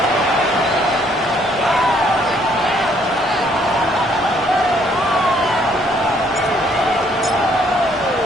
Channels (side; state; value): both; normal; correlation 0.66